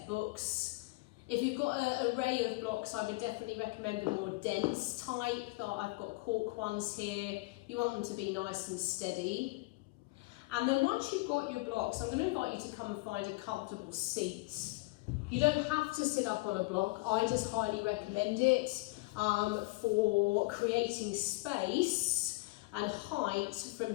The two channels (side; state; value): right; quieter; 24.1 dB